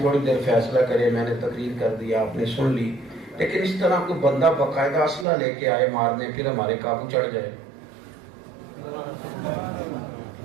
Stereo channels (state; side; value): drops out; left; at 5.2 s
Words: تھوڑی دیر فیصلہ کرے. میں نے تقریر کر دیا، آپ نے سن لی، لیکن اس طرح کوئی بندہ باقاعدہ اسلحہ لے کے آئے مارنے، پھر ہمارے قابو چڑھ جائے.